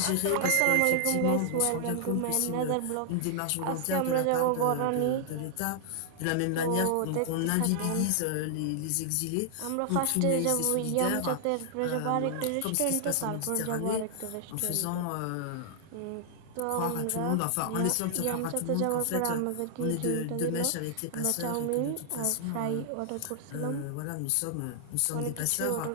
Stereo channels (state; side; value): different; both; correlation -0.01